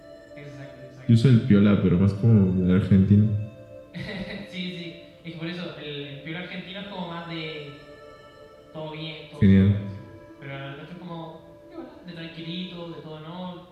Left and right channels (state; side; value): identical; both; correlation 1.00